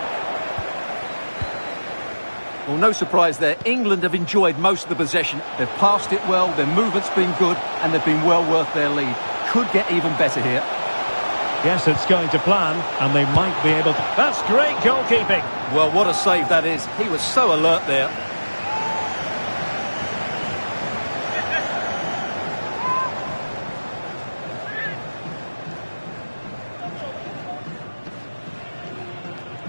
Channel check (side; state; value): both; inverted; correlation -1.00